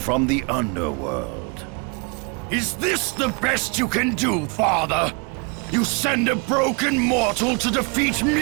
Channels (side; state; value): left; quieter; 33.3 dB